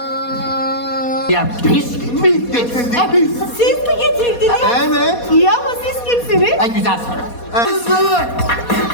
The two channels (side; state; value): right; late; 4.2 ms